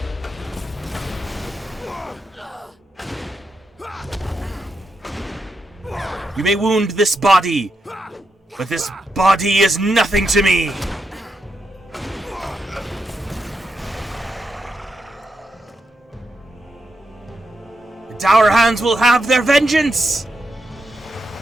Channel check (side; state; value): both; normal; correlation 0.84